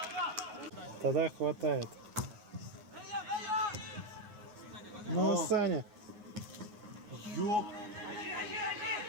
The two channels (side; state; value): left; late; 9.5 ms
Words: Тогда хватает. Ну, Саня. Ёп.